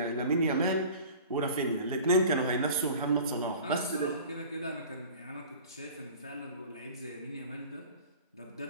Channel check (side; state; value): both; inverted; correlation -0.42